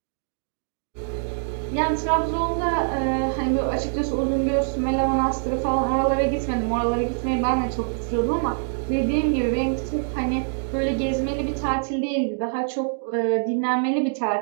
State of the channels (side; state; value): left; silent; digital silence